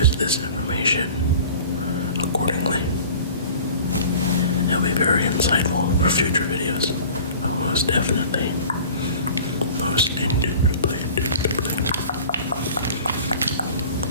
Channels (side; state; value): both; inverted; correlation -0.43